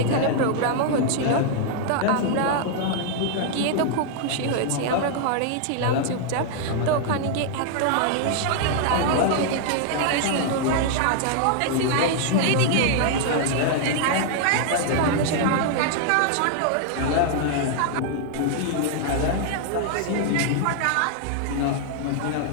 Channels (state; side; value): different; both; correlation 0.00